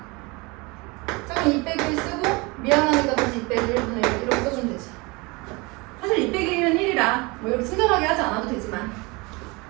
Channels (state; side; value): quieter; left; 26.0 dB